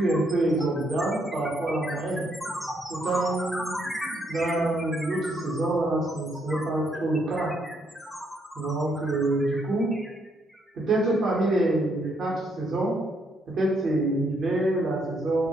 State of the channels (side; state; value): both; normal; correlation 0.74